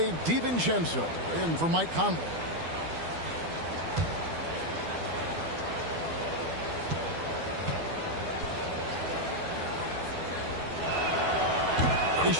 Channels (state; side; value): late; left; 12 ms